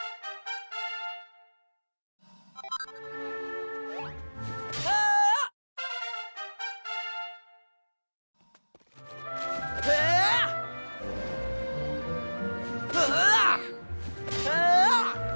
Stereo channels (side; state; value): both; inverted; correlation -1.00